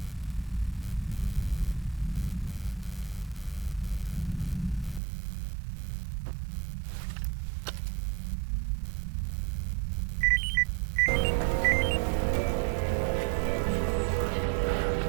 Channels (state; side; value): drops out; left; at 5.0 s